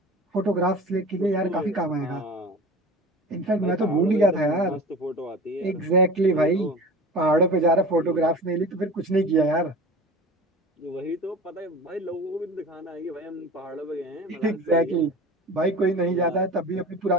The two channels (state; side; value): normal; both; correlation 0.36